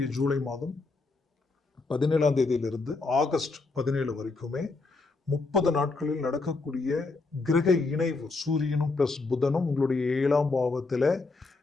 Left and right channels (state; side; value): quieter; right; 3.7 dB